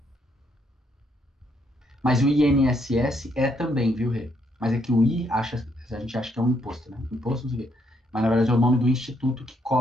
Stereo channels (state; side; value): normal; both; correlation 0.73